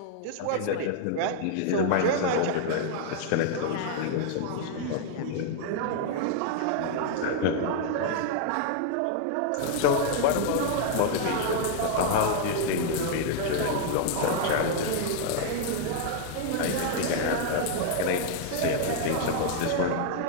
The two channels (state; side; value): different; both; correlation 0.00